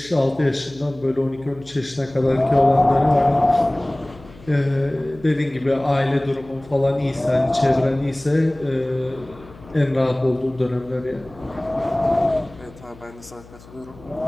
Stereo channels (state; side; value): noise; left; hum, 22 dB below the sound